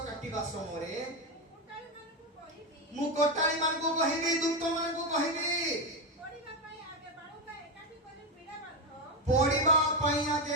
কাটিবা সময়ে मु कोटाली मान को कहिबी दुक्त मान को कहिबी पड़िबा पई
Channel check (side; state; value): both; normal; correlation 0.10